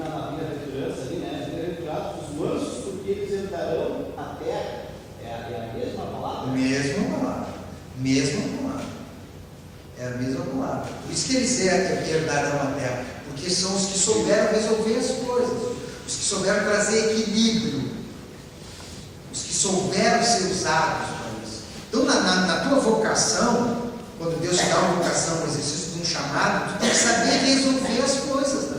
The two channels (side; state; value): both; identical; correlation 1.00